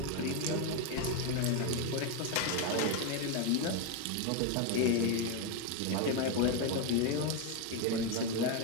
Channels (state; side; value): different; both; correlation 0.02